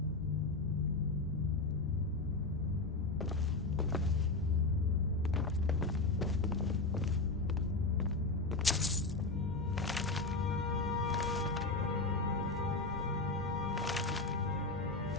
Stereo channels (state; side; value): quieter; right; 3.4 dB